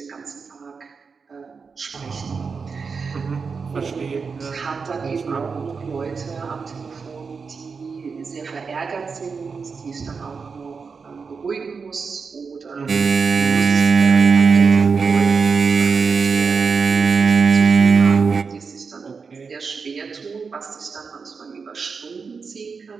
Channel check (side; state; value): left; quieter; 5.2 dB